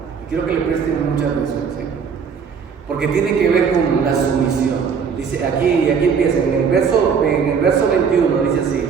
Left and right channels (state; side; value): quieter; left; 6.3 dB